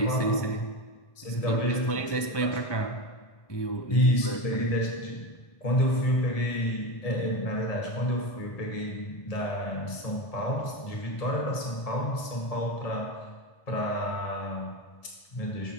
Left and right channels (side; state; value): right; late; 1.7 ms